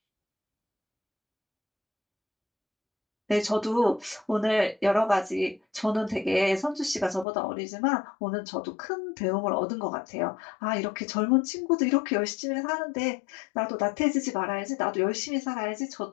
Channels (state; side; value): drops out; right; at 7.2 s